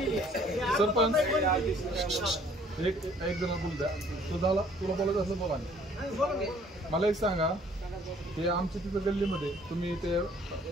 सरपंच एक जण बोल द्या. तुला बोलायचं असं बोला. मला एक सांगा, ते आमच्या तिथं गल्लीमध्ये तुम्ही ते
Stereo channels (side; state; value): both; normal; correlation 0.58